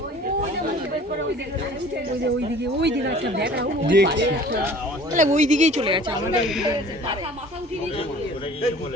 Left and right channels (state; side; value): normal; both; correlation 0.48